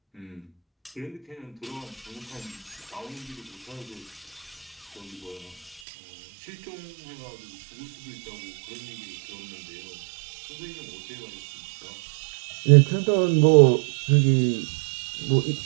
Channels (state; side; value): drops out; left; at 5.8 s